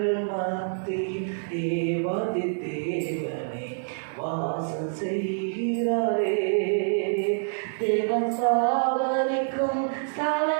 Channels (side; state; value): left; silent; 60 dB below the other